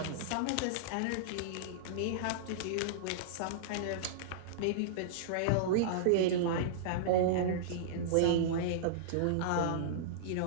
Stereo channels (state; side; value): different; both; correlation -0.03